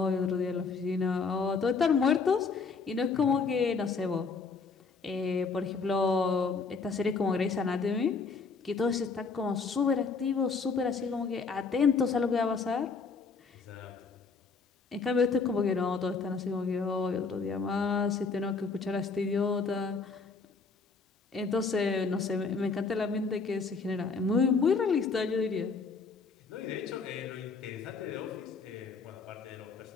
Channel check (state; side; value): quieter; right; 4.7 dB